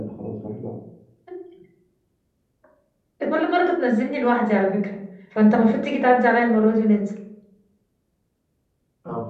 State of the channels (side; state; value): both; identical; correlation 1.00